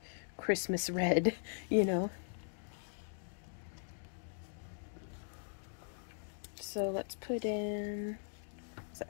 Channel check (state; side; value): silent; right; digital silence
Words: Christmas red, you know? So let's put in, is